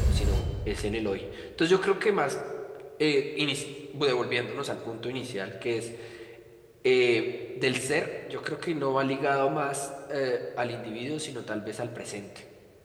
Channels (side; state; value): both; identical; correlation 1.00